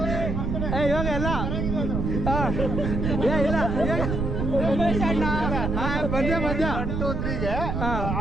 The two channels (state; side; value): noise; right; rumble, 1 dB below the sound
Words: ಇವಾಗ ಎಲ್ಲ ಇಲ್ಲ ಉಮೇಶ್ ಅಣ್ಣ ಮಧ್ಯ 1 2 3 ಗೆ